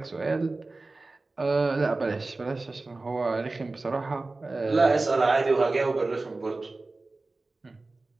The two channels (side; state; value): left; quieter; 3.3 dB